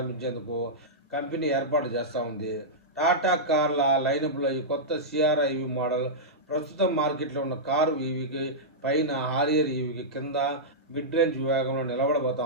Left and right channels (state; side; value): normal; both; correlation -0.11